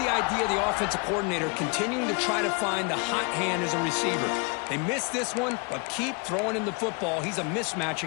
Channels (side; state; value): right; quieter; 32.8 dB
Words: idea of the offensive coordinator continuing to try to find the hot hand as a receiver. They missed this one, but keep throwing him the football. He's a mismatch